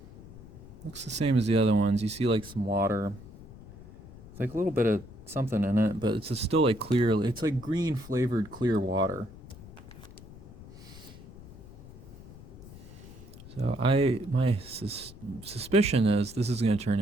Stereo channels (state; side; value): noise; left; rumble, 17 dB below the sound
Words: Looks the same as the other ones. You see like some water. It's like a little bit of something in it, but it's still like clear. It's like green flavored clear water. So my suspicion is this is going to turn